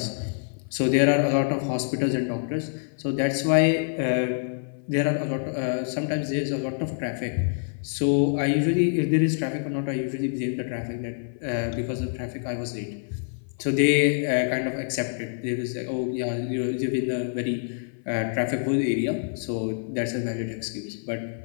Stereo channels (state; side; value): silent; right; 55 dB below the other